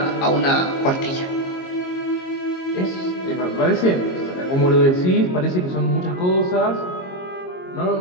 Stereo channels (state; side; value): late; right; 22 ms